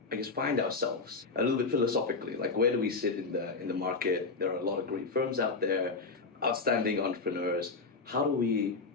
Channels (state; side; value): quieter; right; 4.1 dB